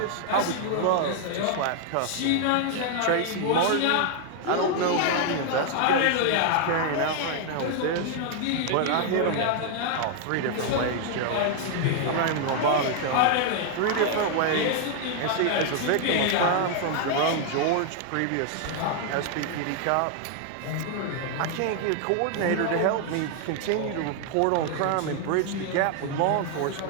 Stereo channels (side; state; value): both; different; correlation 0.00